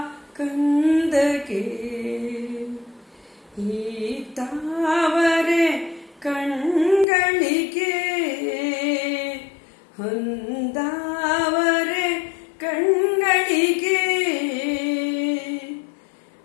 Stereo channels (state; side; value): drops out; right; at 7.1 s